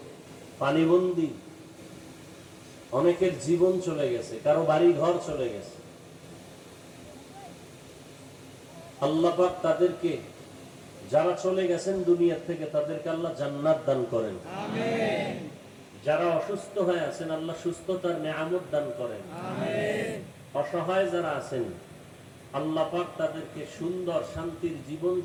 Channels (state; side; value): identical; both; correlation 1.00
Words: পানিবন্দী, অনেকের জীবন চলে গেছে, কারো বাড়ি ঘর চলে গেছে। আল্লাহ পাক তাদেরকে, যারা চলে গেছেন দুনিয়া থেকে, তাদেরকে আল্লাহ জান্নাত দান করেন। আমিন। যারা অসুস্থ হয়ে আছেন, আল্লাহ সুস্থতার নেয়ামত দান করেন। আমিন। অসহায় যারা আছেন, আল্লাহ পাক তাদেরকে সুন্দর শান্তির জীবন